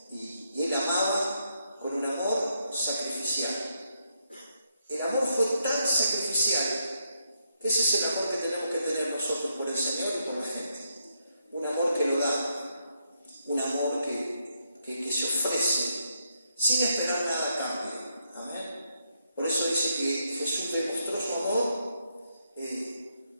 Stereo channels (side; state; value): both; inverted; correlation -0.79